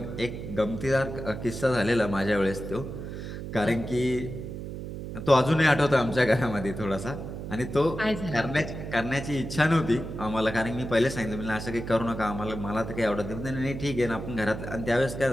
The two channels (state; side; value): noise; right; hum, 8 dB below the sound